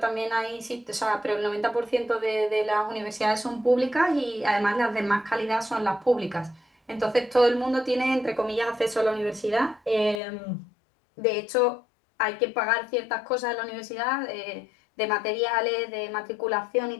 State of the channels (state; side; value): drops out; right; at 10.2 s